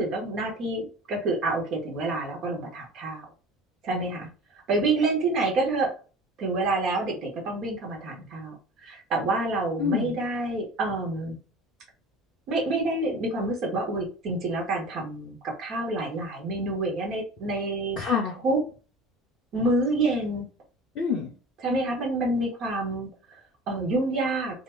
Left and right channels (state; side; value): normal; both; correlation 0.38